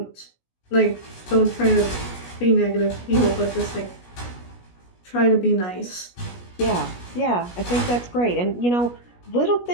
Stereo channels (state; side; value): late; right; 17 ms